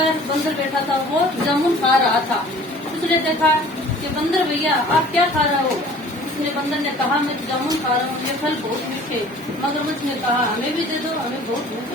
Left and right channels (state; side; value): normal; both; correlation 0.48